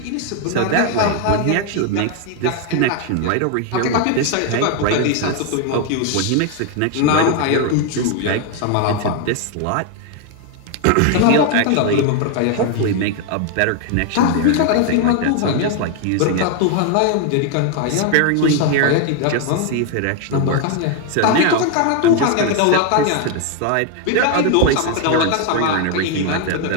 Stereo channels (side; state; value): both; different; correlation 0.01